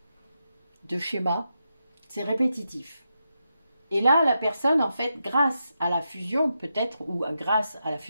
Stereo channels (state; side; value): inverted; both; correlation -0.86